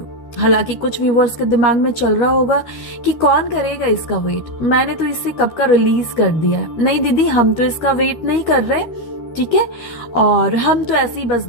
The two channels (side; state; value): right; late; 13 ms